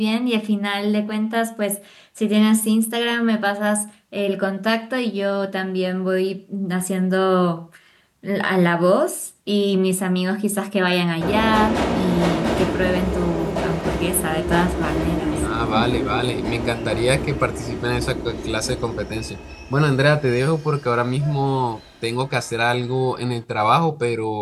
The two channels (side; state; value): both; identical; correlation 1.00